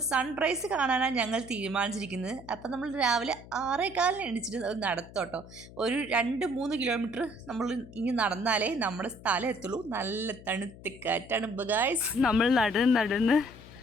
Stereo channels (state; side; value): noise; left; hum, 18 dB below the sound